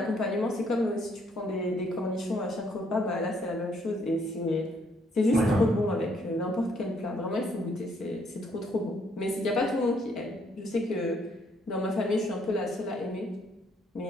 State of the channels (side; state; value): both; normal; correlation 0.69